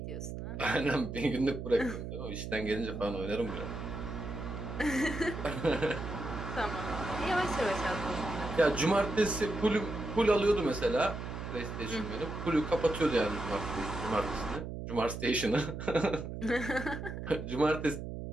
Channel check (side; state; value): right; noise; hum, 7 dB below the sound